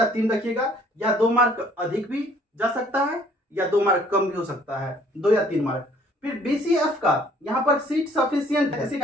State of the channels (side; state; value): both; normal; correlation 0.59